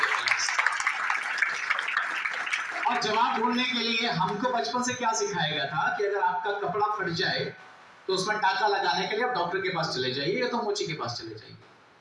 और जवाब ढूंढने के लिए हमको बचपन से क्या सिखाया गया था कि अगर आपका कपड़ा फट जाए तो उसमें टाका लगाने के लिए आप डॉक्टर के पास चले जाइए या तो मोची के पास चले जाइए,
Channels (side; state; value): both; identical; correlation 1.00